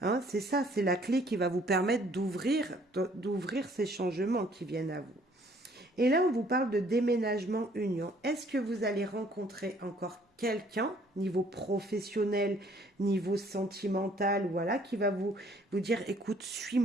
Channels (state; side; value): normal; both; correlation 0.60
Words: c'est ça, c'est la clé qui va vous permettre d'ouvrir ces changements qui viennent à vous. Et là, on vous parle de déménagement union. Est-ce que vous allez rencontrer encore quelqu'un, niveau professionnel, niveau sentimental, voilà, qui va vous dire, écoute,